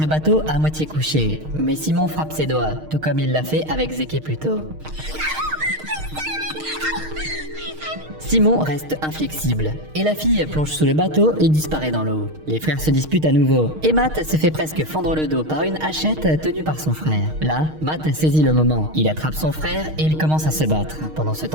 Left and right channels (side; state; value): left; late; 6.5 ms